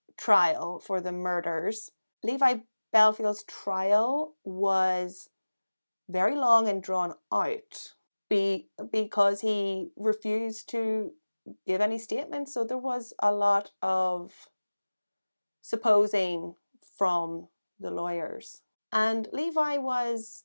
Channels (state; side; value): inverted; both; correlation -1.00